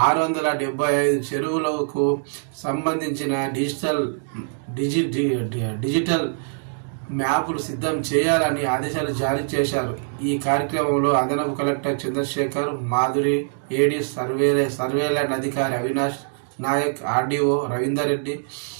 675 చెరువులకు సంబంధించిన డిజిటల్ మ్యాపులు సిద్ధం చేయాలని ఆదేశాలు జారీ చేశారు. ఈ కార్యక్రమంలో అదనపు కలెక్టర్ చంద్రశేఖర్, మాధురి, ఏడీ, సర్వే ల్యాండ్ అధికారి అవినాష్ నాయక్, ఆర్డీఓ రవీందర్ రెడ్డి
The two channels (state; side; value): silent; left; digital silence